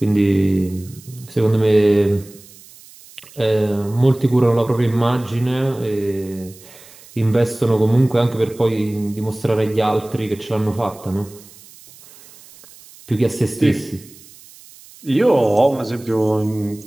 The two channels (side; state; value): right; noise; hiss, 22 dB below the sound